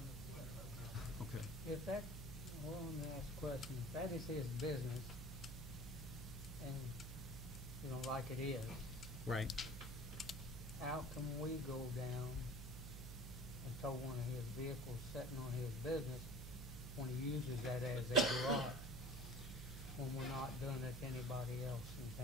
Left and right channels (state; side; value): noise; right; hum, 7 dB below the sound